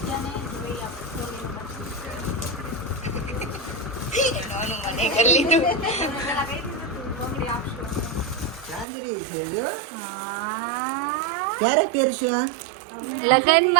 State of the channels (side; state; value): left; drops out; at 8.8 s